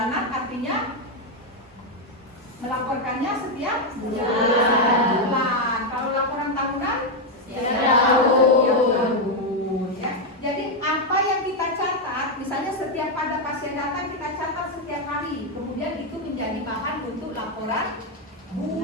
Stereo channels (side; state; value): both; normal; correlation 0.03